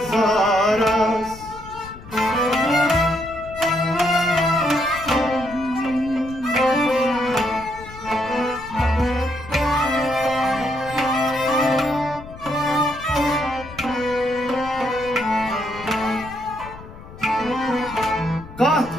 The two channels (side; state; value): left; noise; rumble, 16 dB below the sound